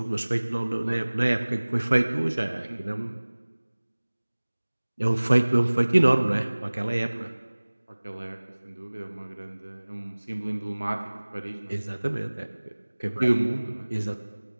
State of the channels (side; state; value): both; inverted; correlation -1.00